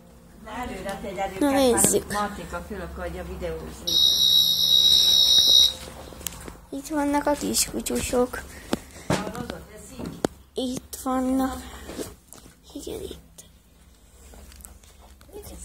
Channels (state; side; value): identical; both; correlation 1.00